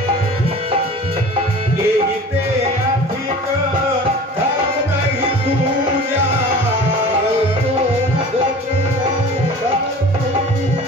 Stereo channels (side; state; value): both; normal; correlation 0.40